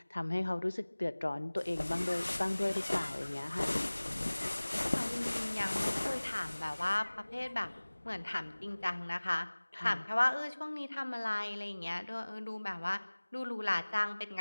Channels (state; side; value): inverted; both; correlation -1.00